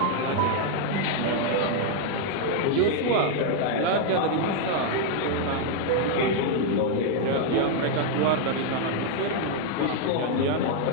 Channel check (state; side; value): different; both; correlation 0.00